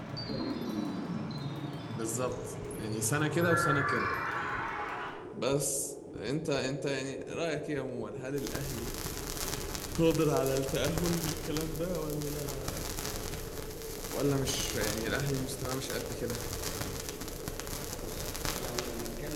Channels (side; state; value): both; identical; correlation 1.00